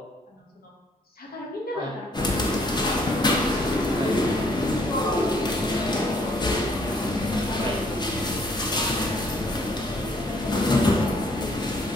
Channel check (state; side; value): normal; both; correlation 0.64